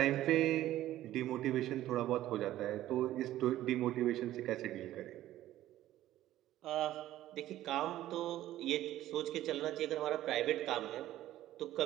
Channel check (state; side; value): quieter; left; 14.0 dB